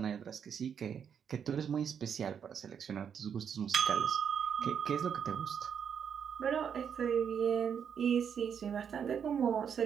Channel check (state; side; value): quieter; left; 7.6 dB